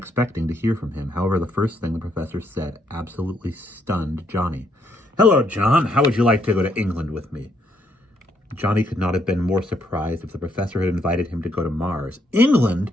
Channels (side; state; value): both; normal; correlation 0.73